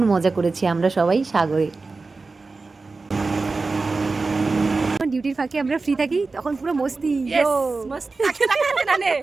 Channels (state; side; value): quieter; left; 3.9 dB